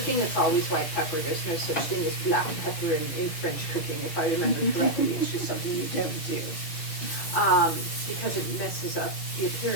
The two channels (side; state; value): right; late; 6.4 ms